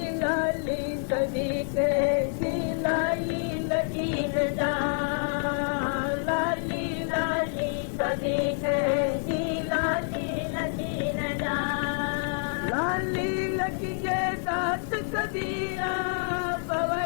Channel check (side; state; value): right; silent; digital silence